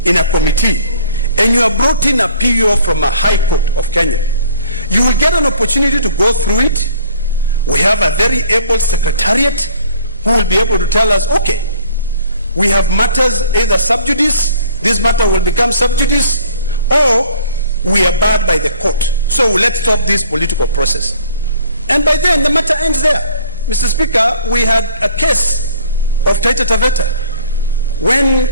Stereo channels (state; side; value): inverted; both; correlation -0.54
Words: in a committee and you are brought in a PO from a high court of Kenya, you will get an opportunity to go through it. We have a very able secretariat who will be able to tell us, okay, we have matters either sub judice, this matter will become sub judice, or we are barred by the court. So let's stop this political process. And by then the matter ends there. Mr. Speaker, we had a case of Taita Taveta. When